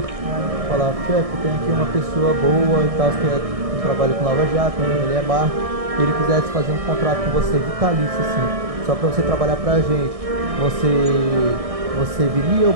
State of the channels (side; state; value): left; late; 1.6 ms